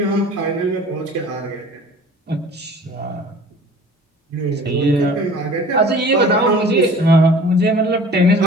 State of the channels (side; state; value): both; normal; correlation 0.46